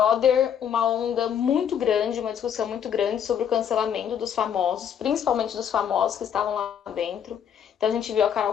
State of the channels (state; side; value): quieter; right; 8.6 dB